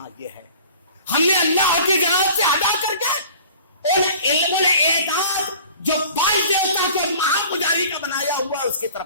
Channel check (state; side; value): inverted; both; correlation -0.46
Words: یہ ہے. ہم نے اللہ کی جانب سے ادا کر کے ان علم الاعداد جو باعث دیوتا کے مہا پجاری کا بنایا ہوا اس کی